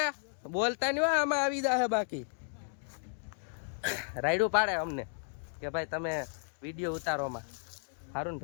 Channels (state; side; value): silent; right; 55 dB below the other